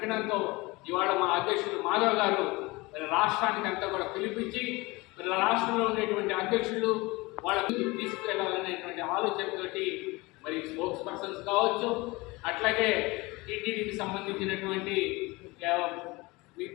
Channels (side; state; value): right; quieter; 23.1 dB